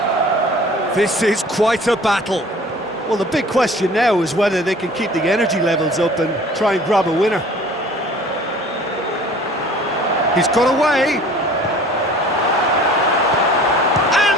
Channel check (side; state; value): both; normal; correlation 0.48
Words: This is quite a battle. Well, the big question now is whether they can keep the energy levels up and try and grab a winner. He's got away.